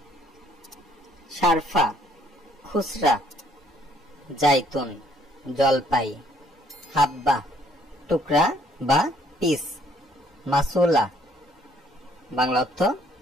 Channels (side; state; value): both; normal; correlation 0.64